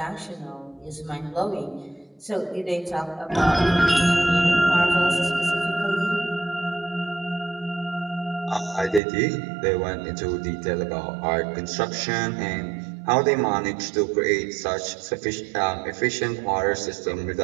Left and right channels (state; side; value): drops out; left; at 9.0 s